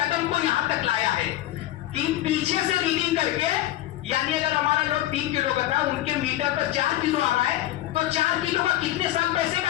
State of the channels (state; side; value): quieter; right; 14.5 dB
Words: को यहां तक लाया है कि पीछे से रीडिंग करके, यानी अगर हमारा लोग 3 किलो का था, उनके मीटर पर 4 किलो आ रहा है, तो 4 किलो का कितने साल पैसे